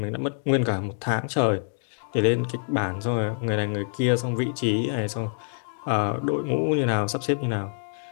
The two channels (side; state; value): right; silent; digital silence